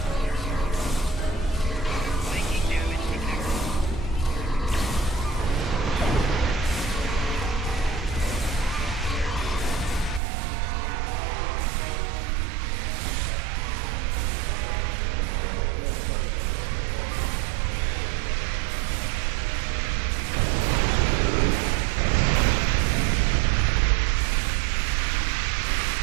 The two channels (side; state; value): left; drops out; at 10.2 s